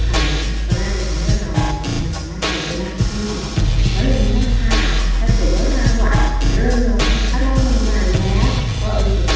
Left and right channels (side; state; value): both; identical; correlation 1.00